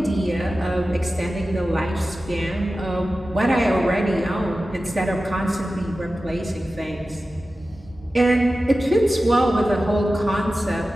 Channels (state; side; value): normal; both; correlation 0.94